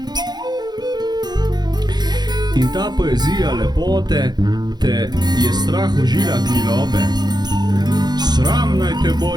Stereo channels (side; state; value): left; late; 0.20 ms